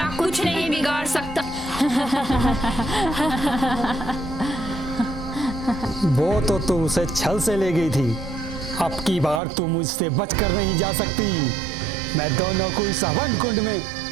कुछ नहीं बिगाड़ सकता। वो तो तू उसे छल से ले गई थी, अब की बार तू मुझसे बचकर नहीं जा सकती। मैं दोनों को इस हवन कुंड में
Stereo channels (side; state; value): left; drops out; at 9.4 s